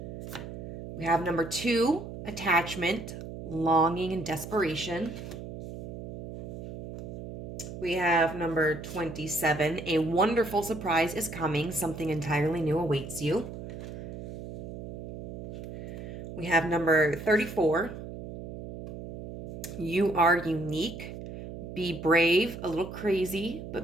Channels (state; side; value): noise; right; hum, 10 dB below the sound